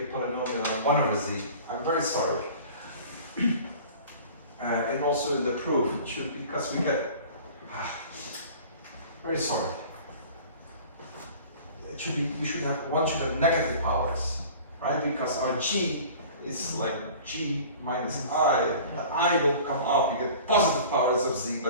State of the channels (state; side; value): inverted; both; correlation -0.43